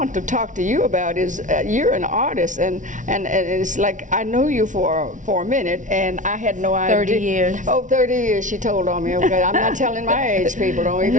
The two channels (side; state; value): left; late; 0.37 ms